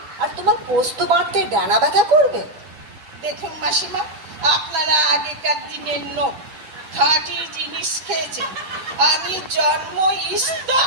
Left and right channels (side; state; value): left; late; 10 ms